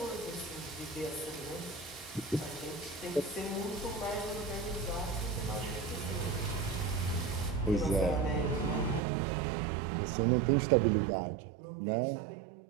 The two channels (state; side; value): drops out; left; at 9.0 s